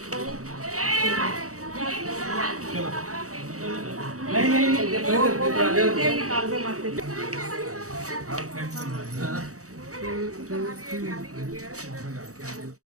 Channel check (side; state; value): left; late; 0.65 ms